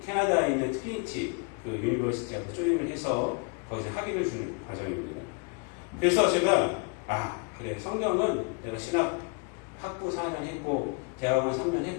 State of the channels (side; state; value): right; quieter; 34.4 dB